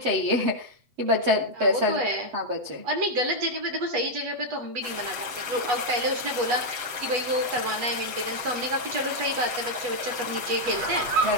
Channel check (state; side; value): late; left; 7.6 ms